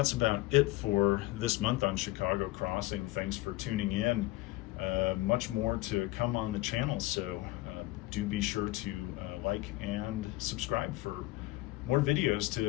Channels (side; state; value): right; quieter; 18.7 dB